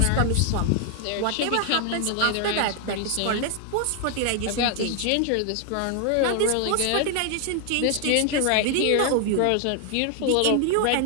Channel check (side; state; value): both; different; correlation 0.00